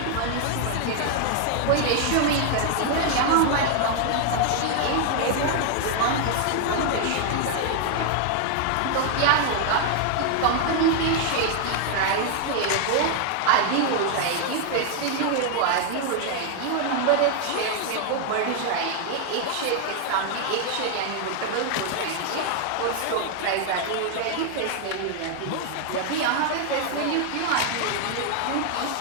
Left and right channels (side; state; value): both; different; correlation 0.00